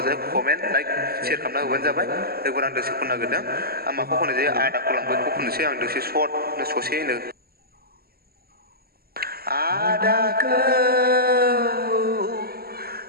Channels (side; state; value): left; late; 0.45 ms